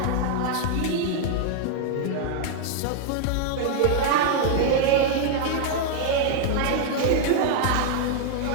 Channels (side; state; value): both; different; correlation 0.00